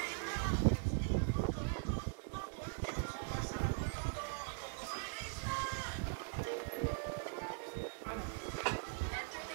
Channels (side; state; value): left; silent; digital silence